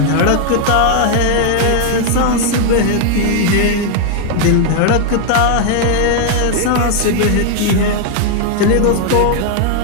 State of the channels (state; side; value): different; both; correlation 0.00